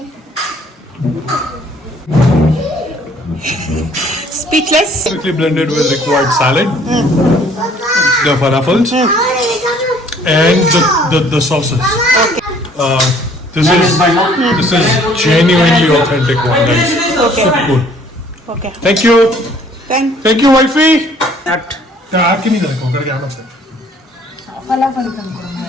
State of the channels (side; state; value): both; normal; correlation 0.58